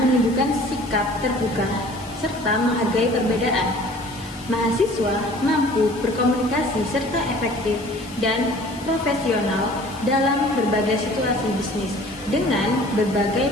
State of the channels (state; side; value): noise; left; hiss, 20 dB below the sound